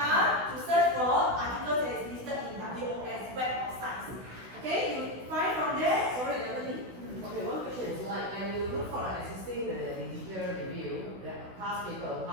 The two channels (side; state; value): left; late; 16 ms